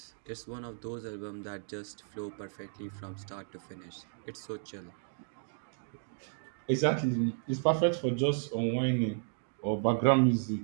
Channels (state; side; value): silent; left; 55 dB below the other